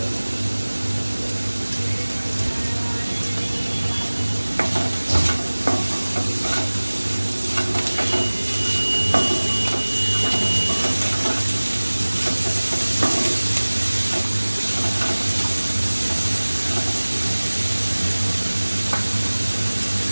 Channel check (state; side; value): inverted; both; correlation -1.00